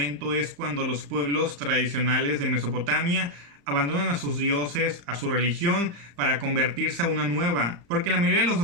es cuando los pueblos tradicionales de Mesopotamia abandonan a sus dioses, a su religión, para convertirse a una nueva. Porque la mayoría de los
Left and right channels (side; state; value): left; late; 35 ms